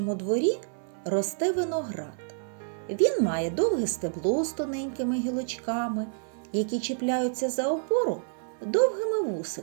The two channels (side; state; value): left; silent; 59 dB below the other